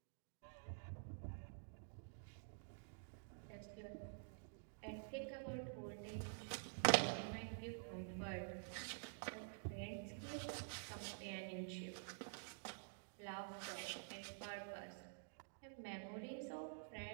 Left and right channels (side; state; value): left; silent; digital silence